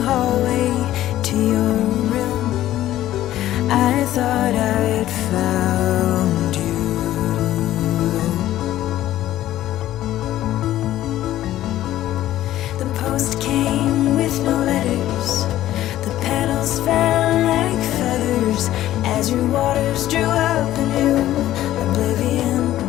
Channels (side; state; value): right; quieter; 13.7 dB